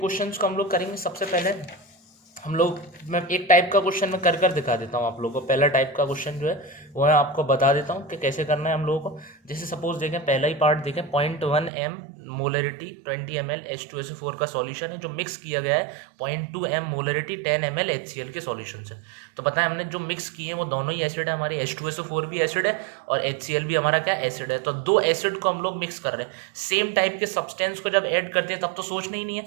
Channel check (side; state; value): left; drops out; at 11.7 s